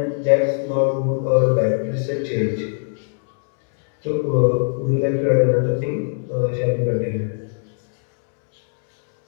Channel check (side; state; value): right; silent; digital silence